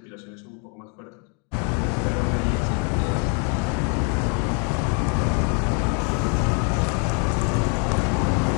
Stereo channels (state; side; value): quieter; right; 38.5 dB